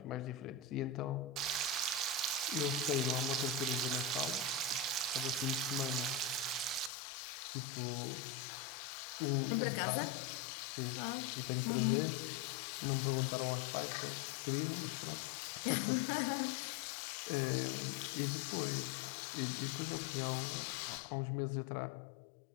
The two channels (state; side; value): drops out; right; at 6.9 s